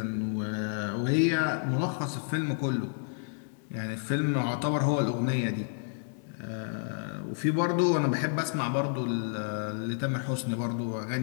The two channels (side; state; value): right; silent; 58 dB below the other